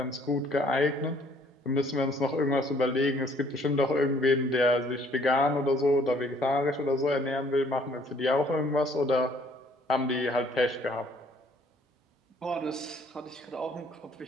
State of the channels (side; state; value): both; normal; correlation 0.61